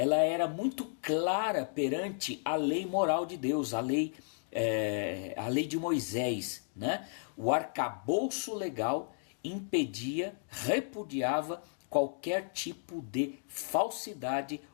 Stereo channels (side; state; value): right; silent; digital silence